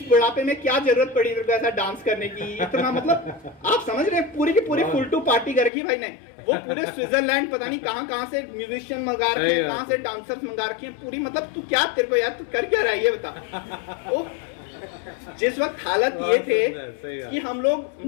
बुढ़ापे में क्या जरूरत पड़ी तेरे को ऐसा डांस करने की, इतना, मतलब आप समझ रहे हैं, पूरी की पूरी फुल टू पार्टी कर रखी भाई ने। वो पूरे स्विट्जरलैंड पता नहीं कहां से म्यूजिशियन मंगा रखे हैं, कहां से डांसर्स मंगा रखे हैं पूरी। मतलब तू क्या, तेरे को यार तू कर क्या रहा है ये बता। वो जिस वक्त हालत ये थे कि हम लोग,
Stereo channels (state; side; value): drops out; right; at 5.7 s